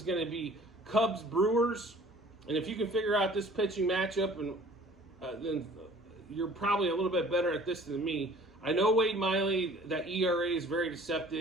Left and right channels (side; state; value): both; normal; correlation 0.50